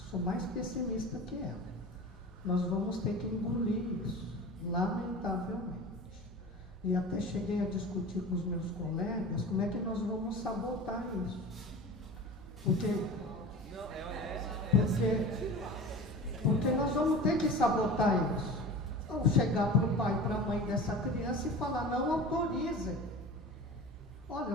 que sou mais pessimista que ela. Nós vamos ter que engolir isso, lamentavelmente. E até cheguei a discutir com os meus colegas como é que nós vamos sabotar isso. Porque nós vamos ter que sabotar isso. Ou chegar para o pai e para a mãe dessa criança e falar, não autorizem.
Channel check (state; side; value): normal; both; correlation 0.35